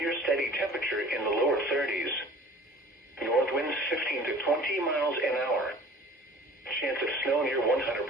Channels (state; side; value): normal; both; correlation 0.46